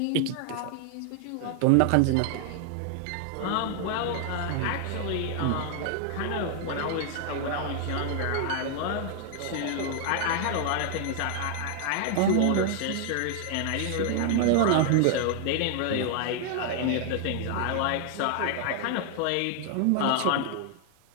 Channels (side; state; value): both; different; correlation 0.00